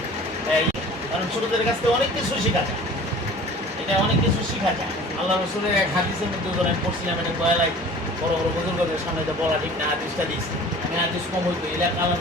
কারণ ছোটদের কাছ থেকে অনেক কিছু শেখা যায়। এটা অনেক কিছু শেখা যায়। আল্লাহ রসুলের এক হাদিসের মধ্যে আমি পড়ছিলাম, এটা বয়ালাই বড় বড় বুজুর্গদের সামনে এটা বলা ঠিক না, হাদিসটা দিয়েছি আমি। হাদিস কম হইতো এলাকা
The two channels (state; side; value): normal; both; correlation 0.44